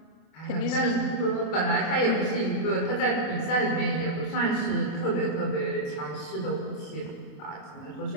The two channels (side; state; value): right; late; 26 ms